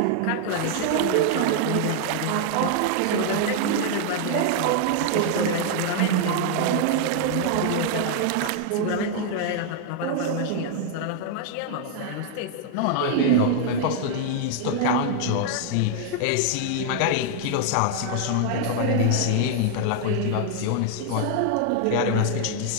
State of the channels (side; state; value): both; different; correlation 0.00